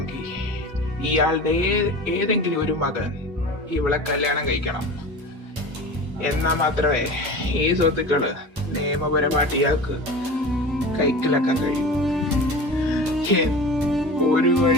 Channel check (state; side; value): normal; both; correlation 0.34